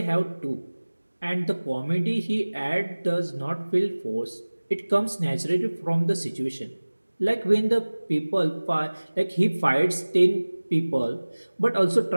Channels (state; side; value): inverted; both; correlation -1.00